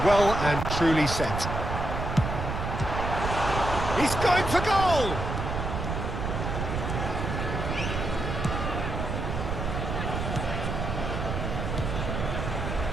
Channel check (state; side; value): noise; right; rumble, 3 dB below the sound